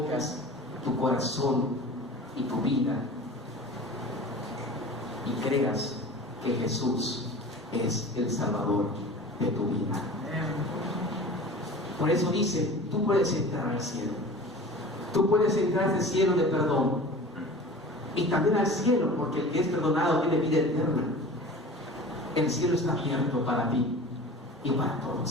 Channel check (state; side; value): normal; both; correlation 0.39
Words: tu corazón y tu vida y creas que Jesús es el Salvador de tu vida. Por eso dice, tú puedes entrar al cielo. Tú puedes entrar al cielo de perdón. Y también al cielo, porque el que es perdonado tiene vida eterna. El cielo está abierto para ti y para